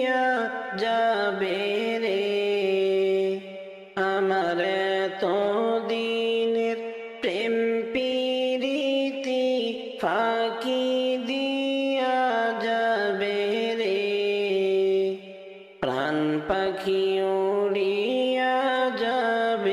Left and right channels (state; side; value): identical; both; correlation 1.00